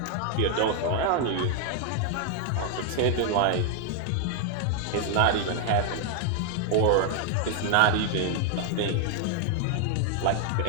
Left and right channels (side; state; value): both; different; correlation 0.00